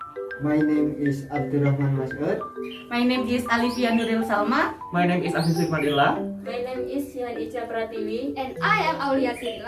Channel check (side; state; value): both; identical; correlation 1.00